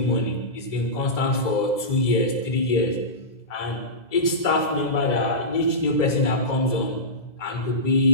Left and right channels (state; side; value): late; right; 2.0 ms